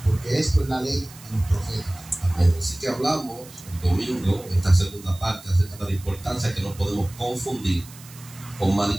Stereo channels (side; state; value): right; noise; hiss, 20 dB below the sound